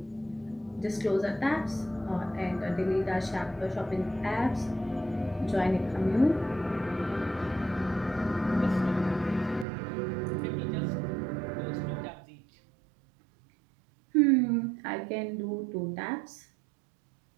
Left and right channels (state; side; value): drops out; left; at 9.7 s